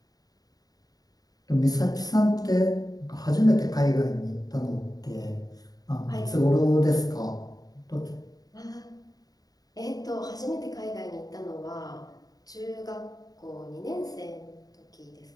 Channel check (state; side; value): late; right; 0.18 ms